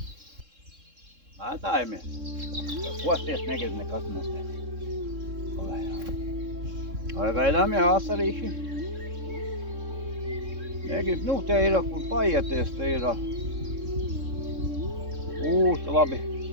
Mētājamies. Kosties negrib nekas nestēt. Vai gaidām jau asarīši? Negrib, nu te ir, kur paieties, te ir. Labi.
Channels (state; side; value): late; left; 3.7 ms